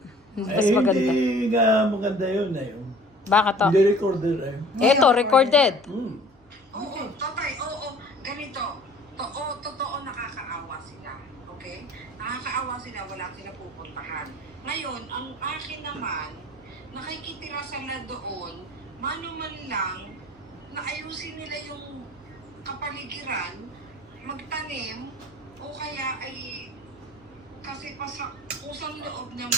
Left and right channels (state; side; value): normal; both; correlation 0.49